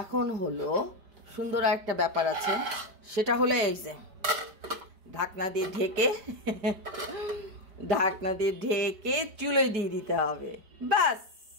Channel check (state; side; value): late; left; 5.1 ms